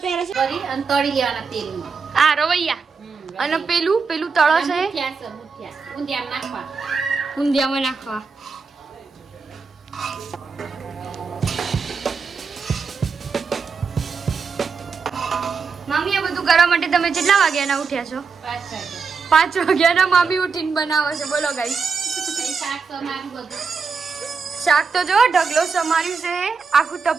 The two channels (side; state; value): left; quieter; 5.2 dB